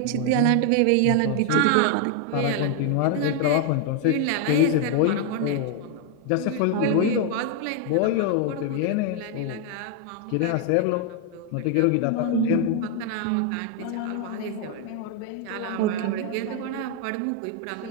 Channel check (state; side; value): different; both; correlation 0.00